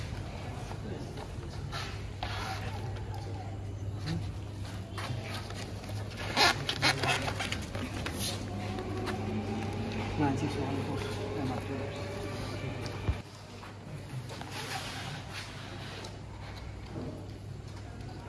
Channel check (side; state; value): both; identical; correlation 1.00